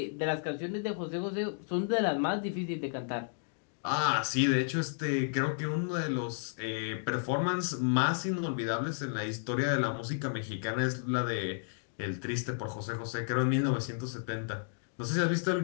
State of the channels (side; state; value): right; silent; digital silence